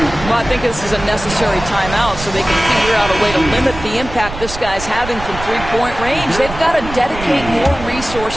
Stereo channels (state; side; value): noise; right; rumble, 11 dB below the sound